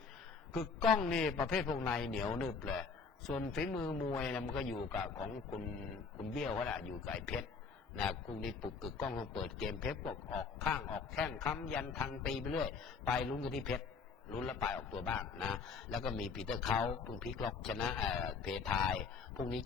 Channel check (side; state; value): right; quieter; 5.1 dB